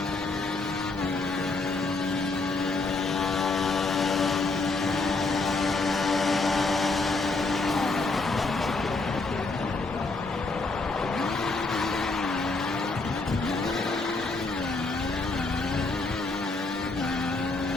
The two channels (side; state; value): right; quieter; 3.6 dB